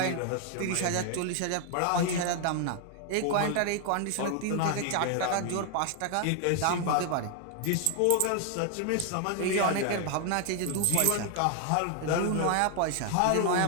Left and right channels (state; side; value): different; both; correlation 0.00